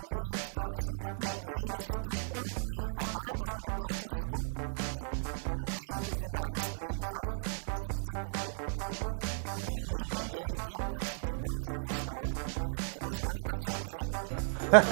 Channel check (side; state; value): left; silent; 54 dB below the other